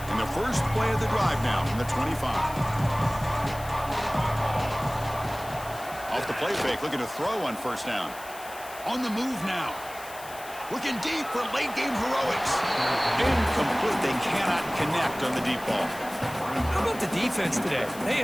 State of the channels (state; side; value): noise; left; hiss, 16 dB below the sound